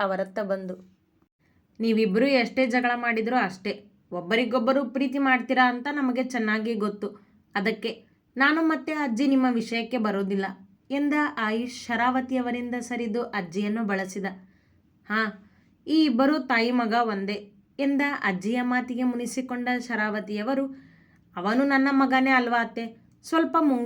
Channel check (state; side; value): identical; both; correlation 1.00